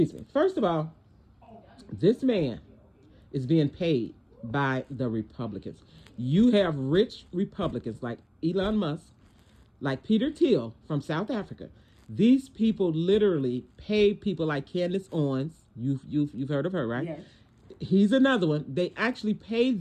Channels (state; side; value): identical; both; correlation 1.00